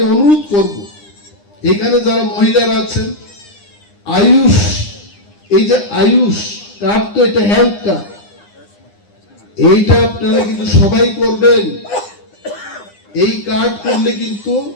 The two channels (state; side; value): late; right; 9.8 ms